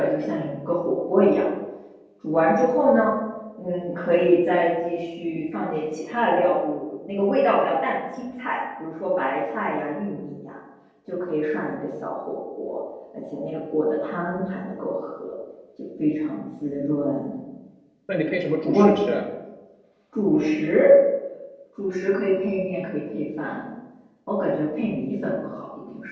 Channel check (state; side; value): identical; both; correlation 1.00